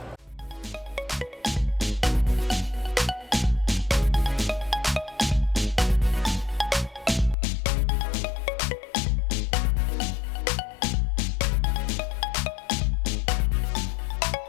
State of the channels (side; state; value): right; drops out; at 7.4 s